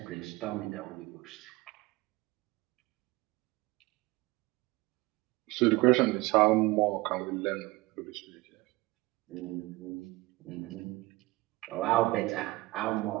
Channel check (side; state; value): left; quieter; 21.0 dB